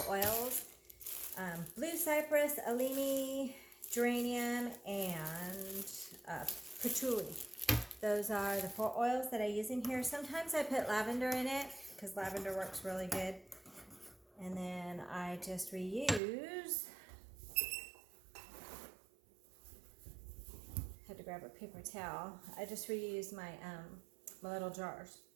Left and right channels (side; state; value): left; drops out; at 16.2 s